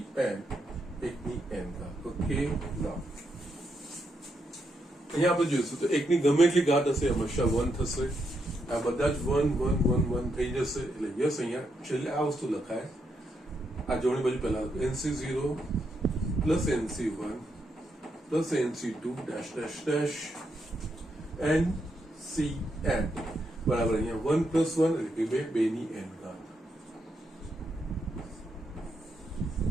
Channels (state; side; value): normal; both; correlation 0.80